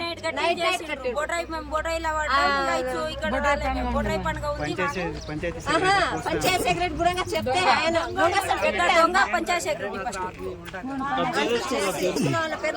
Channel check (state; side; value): identical; both; correlation 1.00